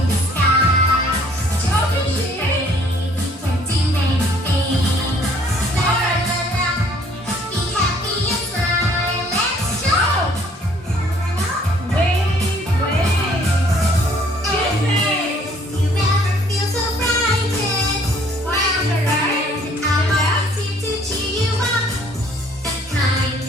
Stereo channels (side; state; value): both; normal; correlation 0.60